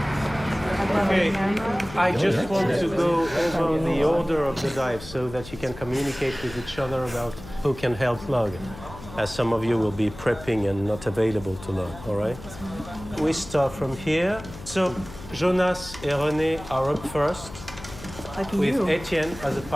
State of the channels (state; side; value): noise; left; hum, 14 dB below the sound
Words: Okay, I just want to go over the order of the dive so that you can communicate with each other about who can help log, as some of you will be prepping and not available to log, all right? We start from here. So Jonas and René are up first, with Etienne as a